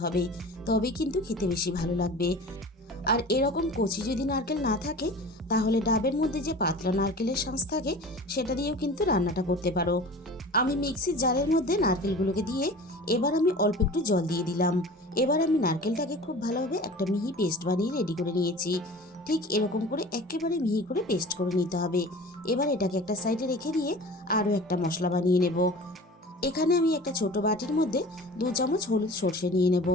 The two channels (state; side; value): normal; both; correlation 0.39